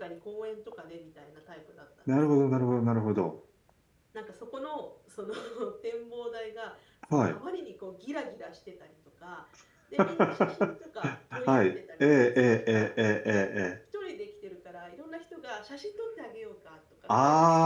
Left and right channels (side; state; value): both; identical; correlation 1.00